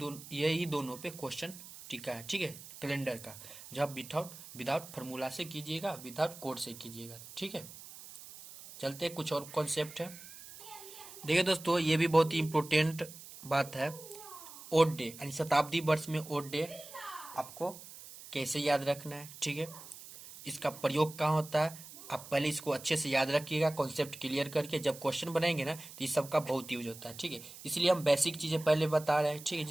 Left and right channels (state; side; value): noise; right; hiss, 15 dB below the sound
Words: यही दोनों पे क्वेश्चन टिका है। ठीक है, कैलेंडर का जो आप विदाउट फार्मूला से कीजिएगा, विदाउट कोड से कीजिएगा। ठीक है, चलते कुछ और कॉन्सेप्ट है। देखिए दोस्तों ये भी बहुत ही इंपॉर्टेंट बात है, ओड डे यानी शताब्दी वर्ष में ओड डे आपको कैसे याद रखना है। ठीक है, इसका प्रयोग कहाँ होता है आप पहले इसको अच्छे से याद रखिएगा, कॉन्सेप्ट क्लियर करके जब क्वेश्चन बनाएंगे ना तो इस सब का बहुत यूज होता है। ठीक है, इसलिए हम बेसिक चीजें पहले बता रहे हैं। ठीक है,